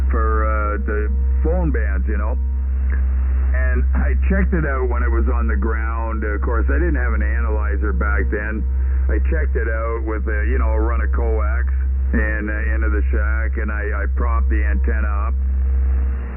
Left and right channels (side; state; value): both; identical; correlation 1.00